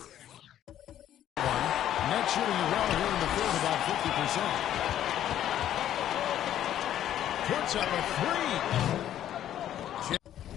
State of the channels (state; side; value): quieter; right; 11.4 dB